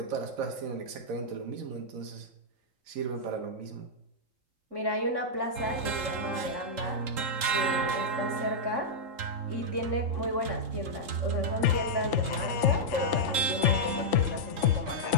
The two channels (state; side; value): late; left; 3.8 ms